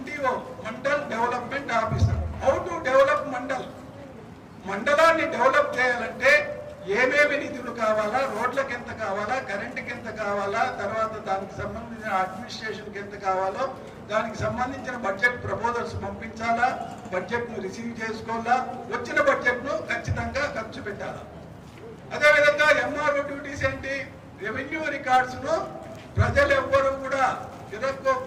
mandal development officer. How to develop మండలాన్ని develop చేయాలంటే ఏమేమి నిధులు కావాలా, రోడ్లకు ఎంత కావాలా, కరెంటుకి ఎంత కావాలా, తర్వాత దానికి సంబంధించిన అడ్మినిస్ట్రేషన్కి ఎంత కావాలో, దానికి సంబంధించిన బడ్జెట్ ప్రపోజల్స్ పంపించాలా, బడ్జెట్ను రిసీవ్ చేసుకోవాలా, వచ్చిన బడ్జెట్ను ఖచ్చితంగా ఖర్చు పెట్టాలా. అదేవిధంగా MRO డ్యూటీస్ ఏంటి? రెవెన్యూ రికార్డ్స్ను ప్రజలు ఎవ్వరూ కూడా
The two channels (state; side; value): identical; both; correlation 1.00